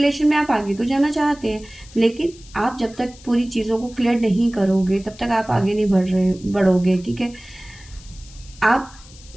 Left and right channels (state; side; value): noise; left; hiss, 22 dB below the sound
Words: में आप आगे तो जाना चाहते हैं, लेकिन आप जब तक पूरी चीज़ों को क्लियर नहीं करोगे तब तक आप आगे नहीं बढ़ोगे। ठीक है, आप